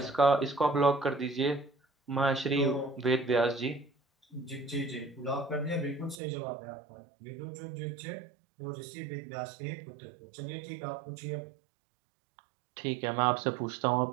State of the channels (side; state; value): left; drops out; at 6.2 s